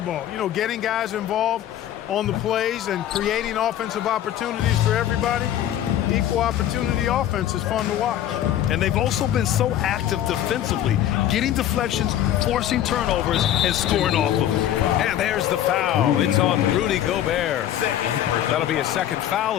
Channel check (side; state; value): right; quieter; 11.5 dB